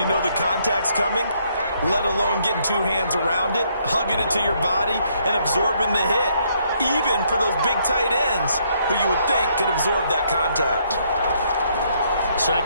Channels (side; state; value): both; inverted; correlation -0.70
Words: know the contact's coming, let alone getting 2 hands around it, hugging it to your body, and absorbing the hit, even for those big tight ends who you would think could absorb that contact.